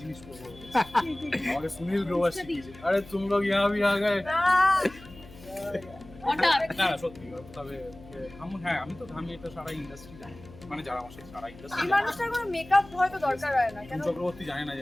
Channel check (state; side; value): noise; left; hum, 20 dB below the sound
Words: জিনিস করবো, আমাকে সুনীল গ্রোভার শিখিয়েছে, আরে তুম লোগ ইহা ভি আ গয়ে। না সত্যি, তবে আমি এটা সারা ইন্ডাস্ট্রি জানি, মানে যারা আমার সাথে সারা ইন্ডাস্ট্রি এই মানুষটার কোনো মেকআপ হয়তো দরকার হয় না কেন? চক্রবর্তী জানে না